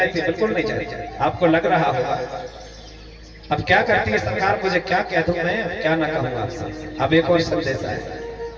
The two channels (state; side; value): identical; both; correlation 1.00